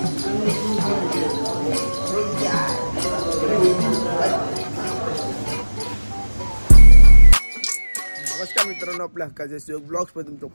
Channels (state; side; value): inverted; both; correlation -1.00